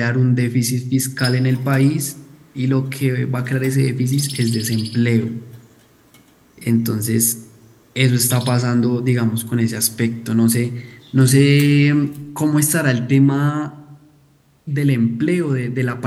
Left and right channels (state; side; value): identical; both; correlation 1.00